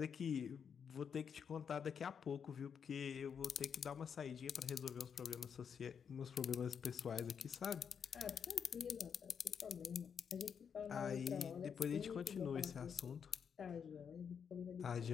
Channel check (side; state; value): right; quieter; 7.1 dB